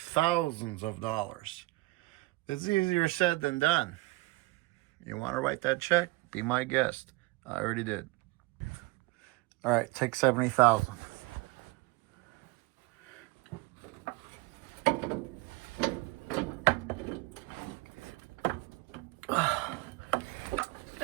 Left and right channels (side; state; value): left; quieter; 22.1 dB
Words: of dollars. It's easier said than done. You want to write that check? Be my guest. I already did. All right, take $70,000.